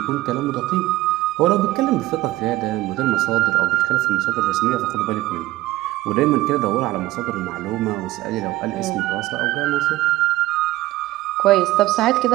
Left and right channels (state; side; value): quieter; left; 17.0 dB